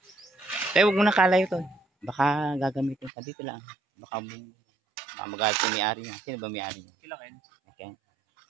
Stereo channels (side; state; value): left; drops out; at 3.1 s